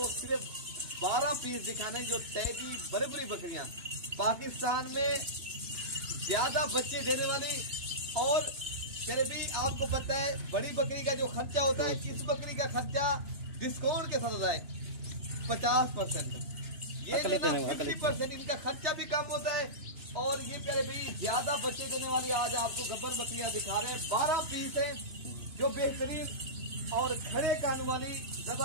सिर्फ 12 पीस दिखाने जो टैडी बड़ी बकरियाँ पाकिस्तान में ज्यादा बच्चे देने वाली। और प्यारे भी आपको पता है बड़ी बकरी का जो खर्चा होता है, इस बकरी का खर्चा डिस्काउंट के साथ होता है 50%। ये 50% इनका खर्चा भी कम होता है। और ये प्यारे भाई ज्यादा बच्चे देने वाली आज आपको गब्बर बकरियां दिखा रहे हैं। 12 पीस है जो बेहतरीन और खड़े कान वाली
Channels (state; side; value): late; left; 2.9 ms